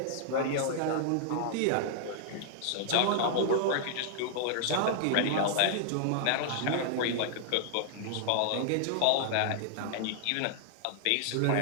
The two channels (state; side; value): different; both; correlation -0.01